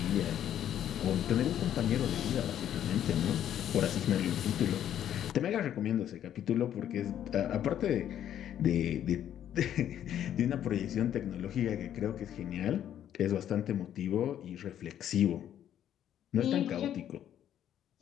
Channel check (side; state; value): right; quieter; 10.6 dB